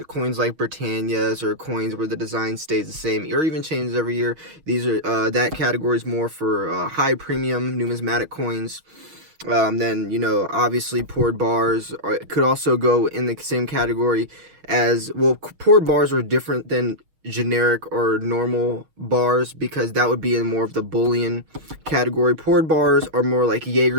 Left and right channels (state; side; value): late; left; 6.4 ms